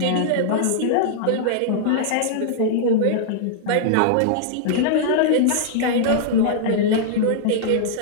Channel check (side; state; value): both; different; correlation -0.02